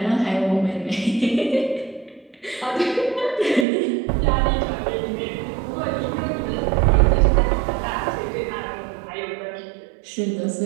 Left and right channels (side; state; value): left; drops out; at 3.7 s